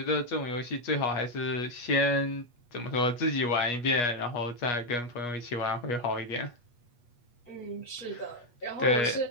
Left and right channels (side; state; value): right; late; 8.3 ms